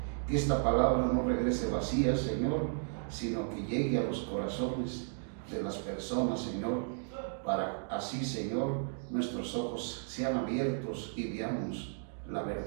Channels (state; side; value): silent; left; digital silence